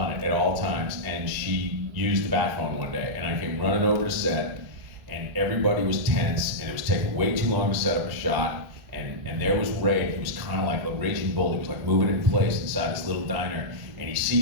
it at all times, and she used the bat phone one day, and I came running over to set, and everybody was tense, and it was taking way too long to set up a shot, and there was Ray. He was kind of like a raging bull. He was like moving in place inside this little diner, and he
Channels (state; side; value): late; left; 1.6 ms